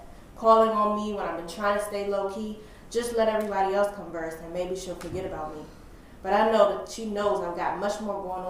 Calling on me when I've been trying to stay low-key, just let everybody else converse and maybe she'll forget about me. But I know that she knows I've got much more going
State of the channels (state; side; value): identical; both; correlation 1.00